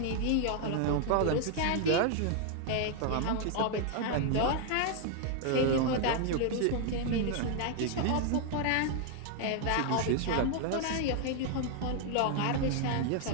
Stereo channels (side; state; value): both; different; correlation 0.00